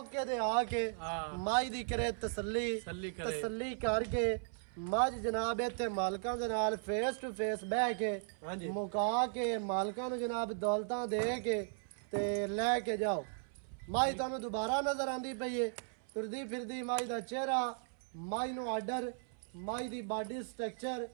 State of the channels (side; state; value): left; silent; 53 dB below the other